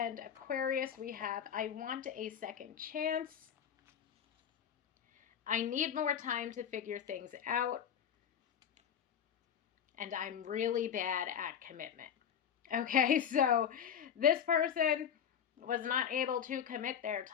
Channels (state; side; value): quieter; right; 8.4 dB